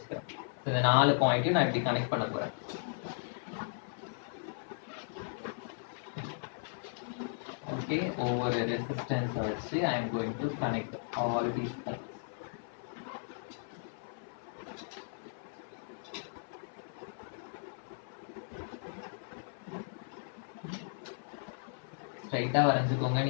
இந்த 4 பாயிண்ட்டையும் நான் இப்படி கனெக்ட் பண்ண போகிறேன். ஓகே, ஒவ்வொரு ரெசிஸ்டன்ஸை வச்சு I am going to connect all these points. ஸ்ட்ரைட்டா வரைஞ்சுக்கோங்க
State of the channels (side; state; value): right; silent; 54 dB below the other